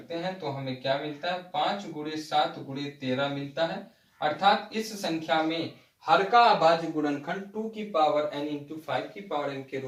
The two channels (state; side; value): identical; both; correlation 1.00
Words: हैं तो हमें क्या मिलता है, 5 × 7 × 13 मिलता है। अर्थात इस संख्या में हर का अभाज्य गुणनखंड 2 की पावर n × 5 की पावर n के